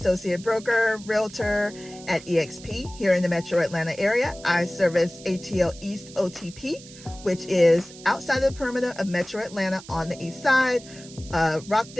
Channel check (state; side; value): noise; right; hiss, 18 dB below the sound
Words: broker, realtor at eXp here in the metro Atlanta area. I service ATL East OTP, which is outside of the perimeter of metro Atlanta on the east side,